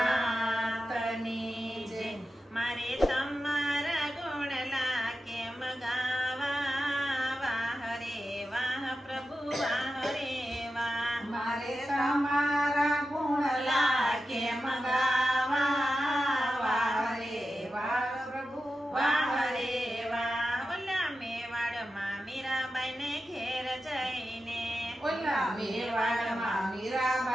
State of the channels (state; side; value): normal; both; correlation 0.91